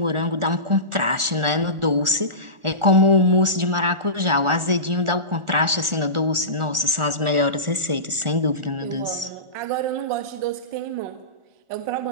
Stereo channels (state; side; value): late; left; 1.4 ms